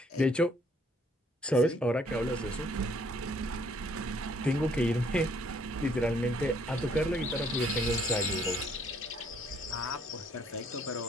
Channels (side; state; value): both; normal; correlation 0.64